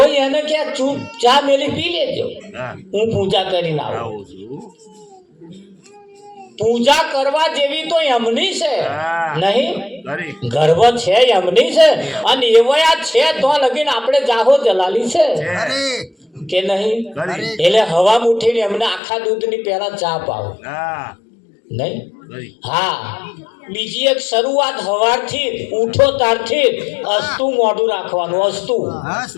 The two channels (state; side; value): drops out; right; at 19.0 s